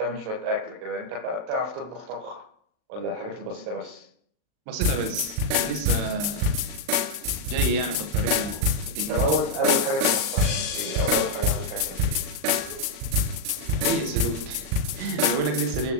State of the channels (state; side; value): late; left; 39 ms